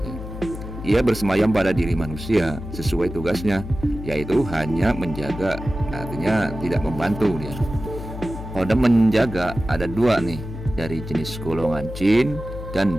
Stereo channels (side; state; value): left; noise; hum, 10 dB below the sound